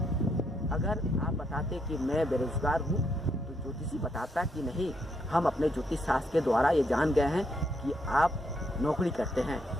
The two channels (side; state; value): both; normal; correlation 0.76